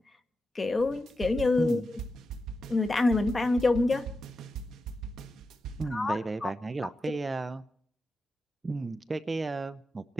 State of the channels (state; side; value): normal; both; correlation 0.89